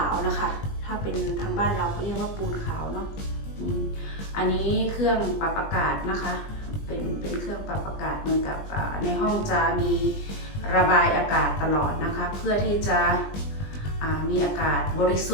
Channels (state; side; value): late; right; 20 ms